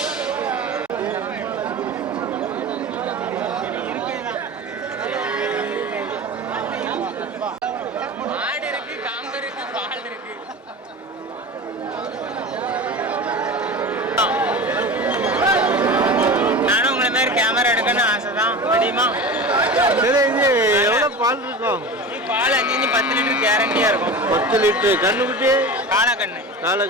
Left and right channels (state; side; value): normal; both; correlation 0.31